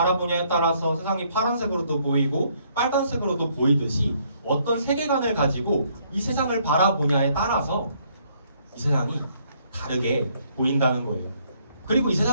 따라서 세상이 파란색으로도 보이고 빨간색으로도 보이듯이 어떤 세계관을 가지고 이 세상을 바라보냐에 따라서 이 세상이 다르게 보인다는 거예요. 그리고 이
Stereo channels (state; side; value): inverted; both; correlation -0.67